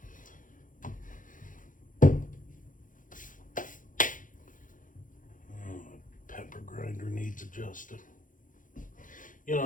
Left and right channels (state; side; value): late; right; 0.38 ms